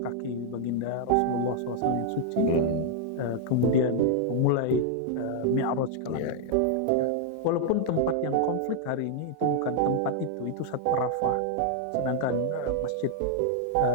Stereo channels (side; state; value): both; different; correlation 0.00